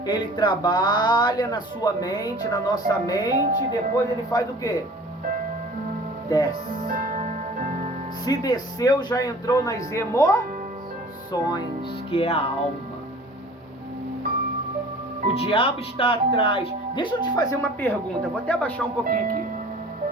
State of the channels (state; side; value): normal; both; correlation 0.46